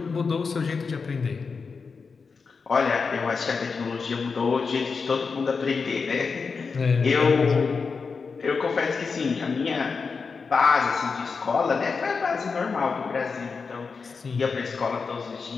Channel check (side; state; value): right; quieter; 5.0 dB